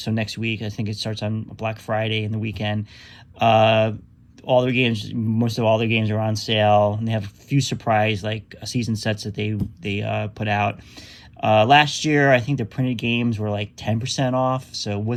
next week, I think it starts on Black Friday and the weekend. Uh, all their games, most of all their games are on sale, and they have a few surprise like season sets that they put out. Last year, I think the printed games were like 10% off, so it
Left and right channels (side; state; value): both; identical; correlation 1.00